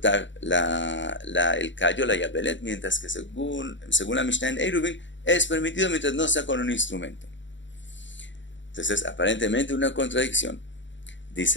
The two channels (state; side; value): late; right; 0.54 ms